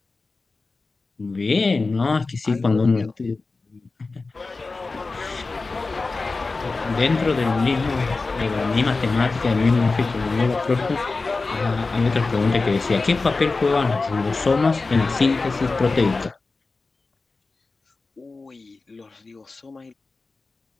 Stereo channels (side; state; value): right; quieter; 3.8 dB